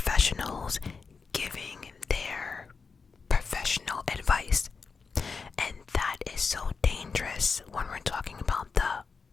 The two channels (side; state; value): right; quieter; 5.0 dB